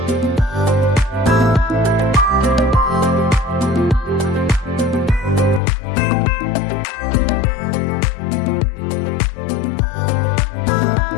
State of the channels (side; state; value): right; drops out; at 5.6 s